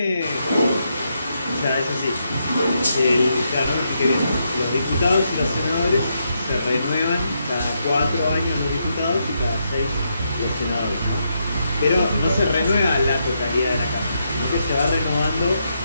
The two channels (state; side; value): inverted; both; correlation -0.81